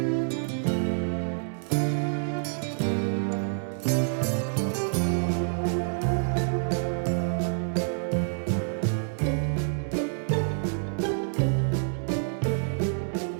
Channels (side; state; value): left; silent; 60 dB below the other